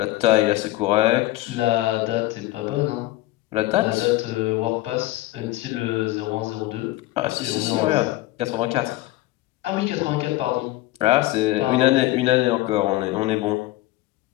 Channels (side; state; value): right; quieter; 17.5 dB